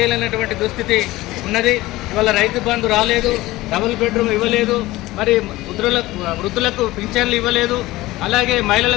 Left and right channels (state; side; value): quieter; right; 18.3 dB